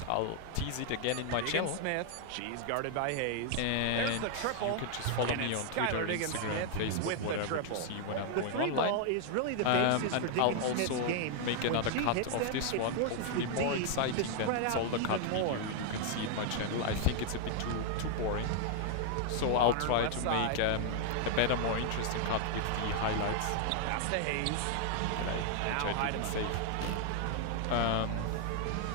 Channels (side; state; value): both; different; correlation 0.00